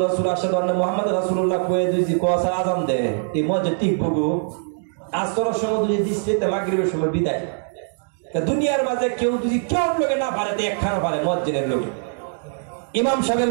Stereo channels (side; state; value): left; silent; digital silence